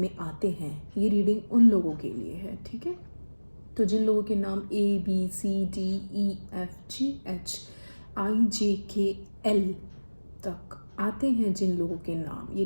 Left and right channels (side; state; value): both; inverted; correlation -1.00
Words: आते हैं, ये रीडिंग उन लोगों के लिए है। ठीक है, तो जिन लोगों के नाम ABCDEFGHIJKL तक आते हैं, जिन लोगों के नाम, ये